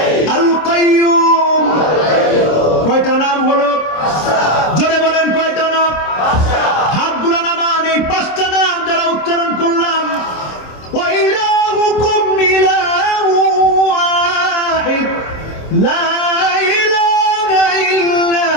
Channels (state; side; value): late; right; 26 ms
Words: আল কাইয়ুম। কয়টা নাম হলো? জোরে বলেন কয়টা নাম? হাতগুলো নামান। এই 5টা নাম যারা উচ্চারণ করলাম, ওয়া ইলাহুকুম ইলাহু ওয়াহিদ লা